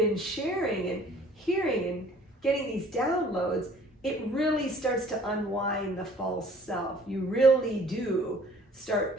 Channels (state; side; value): normal; both; correlation 0.54